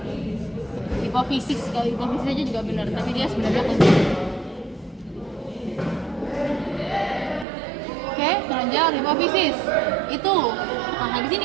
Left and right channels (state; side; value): drops out; left; at 7.5 s